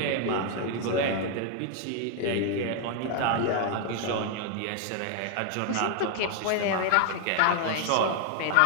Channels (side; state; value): both; different; correlation 0.00